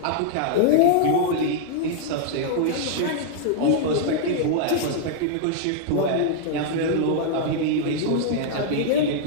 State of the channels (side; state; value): both; different; correlation -0.01